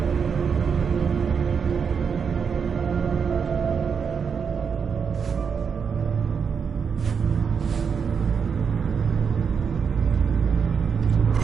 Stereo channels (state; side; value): quieter; left; 6.4 dB